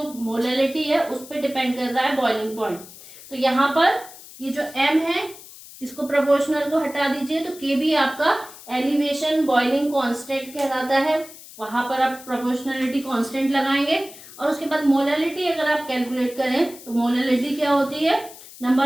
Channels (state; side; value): noise; left; hiss, 18 dB below the sound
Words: मोलैलिटी है उस पर डिपेंड कर रहा है बॉइलिंग पॉइंट। तो यहाँ पर ये जो m है इसको प्रोपोर्शनल को हटा दीजिए तो Kb आपका एलिवेशन बॉइलिंग कांस्टेंट कहलाता है, वहां पर आप प्रोपोर्शनलिटी कांस्टेंट लगाएंगे। और उसके बाद मोलैलिटी अगर आप कैलकुलेट करें तो मोलैलिटी क्या होती है,